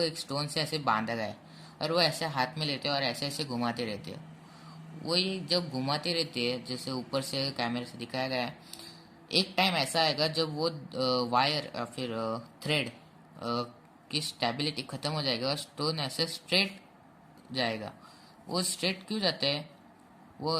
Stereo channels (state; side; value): identical; both; correlation 1.00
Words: एक स्टोन से ऐसे बांधा गया है, और वो ऐसे हाथ में लेते हैं और ऐसे ऐसे घुमाते रहते हैं। वही जब घुमाते रहते हैं, जैसे ऊपर से कैमरे से दिखाया गया है, एक टाइम ऐसा आएगा जब वो वायर या फिर थ्रेड की स्टेबिलिटी खत्म हो जाएगा और स्टोन ऐसे स्ट्रेट जाएगा। वो स्ट्रेट क्यों जाता है, वो